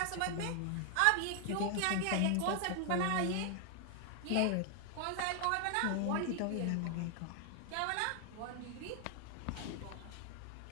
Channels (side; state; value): both; different; correlation 0.00